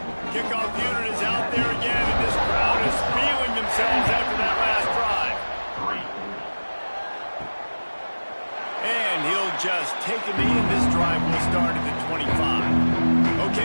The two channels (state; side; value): inverted; both; correlation -1.00